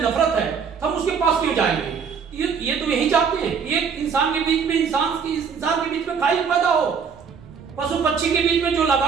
नफरत है, हम उसके पास क्यों जाएंगे? ये तो यही चाहते हैं कि एक इंसान के बीच में इंसान के बीच में खाई पैदा हो, पशु पक्षी के बीच में जो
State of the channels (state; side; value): quieter; left; 6.3 dB